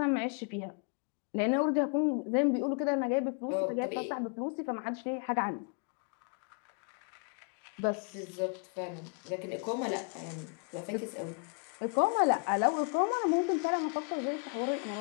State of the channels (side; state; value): right; quieter; 39.9 dB